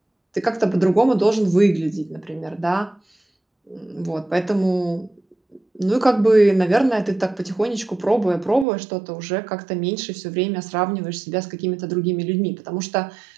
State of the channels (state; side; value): drops out; left; at 8.7 s